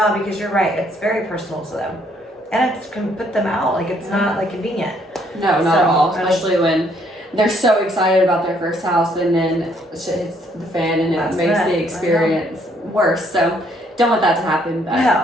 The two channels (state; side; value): normal; both; correlation 0.67